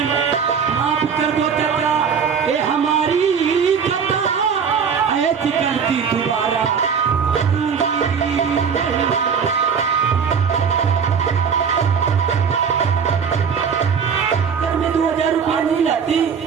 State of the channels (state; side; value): quieter; left; 6.6 dB